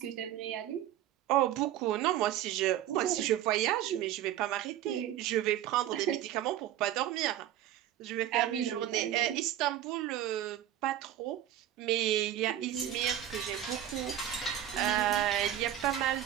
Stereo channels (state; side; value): quieter; left; 11.8 dB